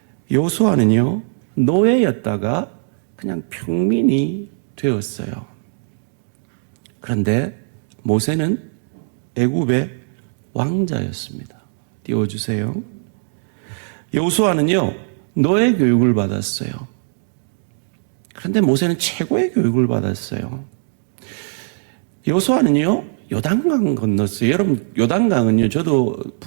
여호수아는요, 노예였다가 그냥 평민이 되었어요. 그런데 모세는 애굽의 왕자였습니다. 띄워주세요. 여호수아는요, 노예 교육을 받았어요. 그런데 모세는 최고의 교육을 받았어요. 여호수아는요, 요단강 건넜어요. 여러분, 요단강은요, 저도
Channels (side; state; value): left; silent; digital silence